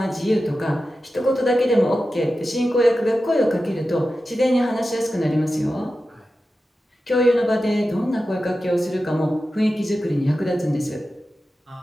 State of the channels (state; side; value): normal; both; correlation 0.93